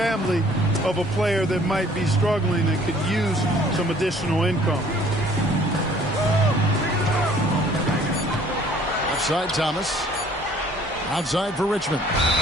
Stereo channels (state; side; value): normal; both; correlation 0.56